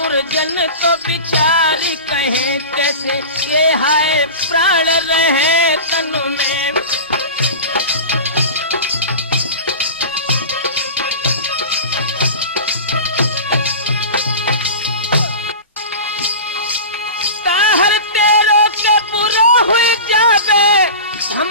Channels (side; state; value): both; inverted; correlation -0.31